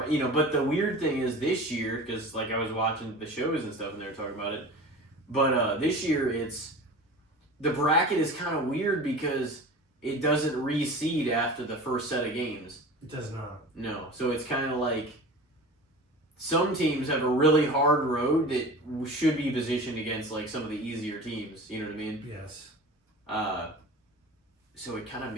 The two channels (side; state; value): both; normal; correlation 0.36